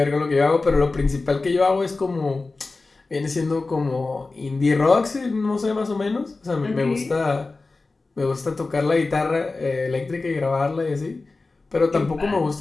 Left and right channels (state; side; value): quieter; right; 3.6 dB